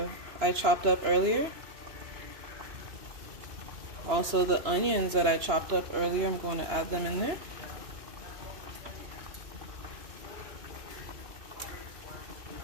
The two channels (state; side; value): late; left; 2.9 ms